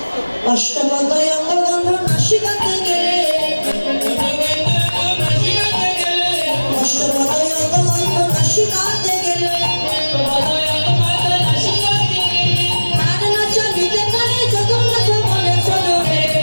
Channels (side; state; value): both; inverted; correlation -1.00